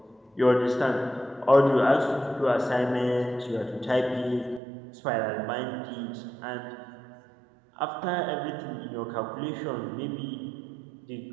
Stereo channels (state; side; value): drops out; left; at 4.6 s